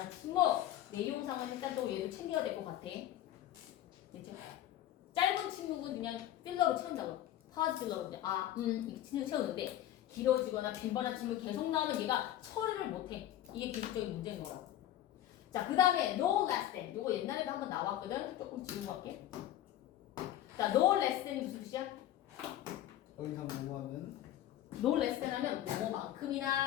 침묵. 내용상은 일단 또 얘도 챙겨야 될 것 같아. 됐죠? 짧은 침묵은 그냥 필러로 채운다고. 파즈 필러로 그냥 이렇게 채우는데 길어지거나 빈번한 침묵이 계속 나오면 얘가 처리를 못해. 이게 기술적인 문제인 거라고. 자, 그 다음에 no less than. 요거 옛날에도 한번 나왔거든. 조금 지우고 갈게. 자, no less than이 무슨 뜻이야? 더 이상 뭐하는 no less than 하면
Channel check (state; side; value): quieter; right; 12.7 dB